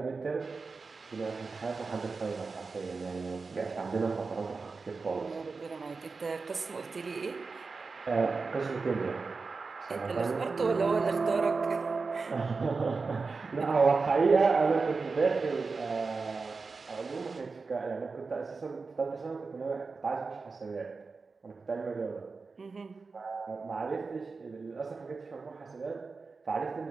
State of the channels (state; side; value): quieter; left; 4.3 dB